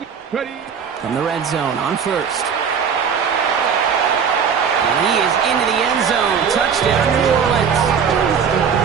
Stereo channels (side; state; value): left; quieter; 6.8 dB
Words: From the red zone on first. And he is into the end zone. Touchdown, New Orleans.